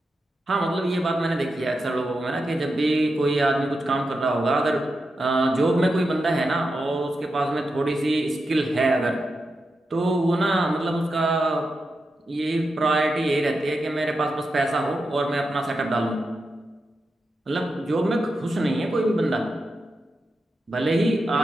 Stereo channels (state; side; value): normal; both; correlation 0.88